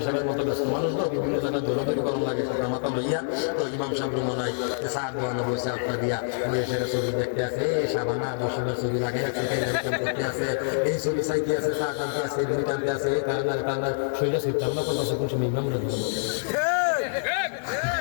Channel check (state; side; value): silent; right; digital silence